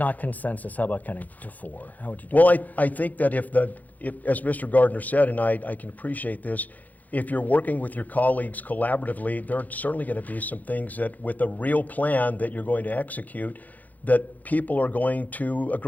consensus, how about counting to 4? How would you do Well, that? I think that if as Mr. Gardner said, and I can appreciate this, if you're working with your colleagues collaboratively, there are certainly going to be some things that, with a real plan that you're going to execute, that people are going to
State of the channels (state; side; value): late; right; 0.080 ms